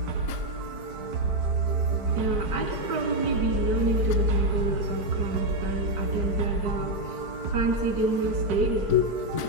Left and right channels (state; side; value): late; left; 4.5 ms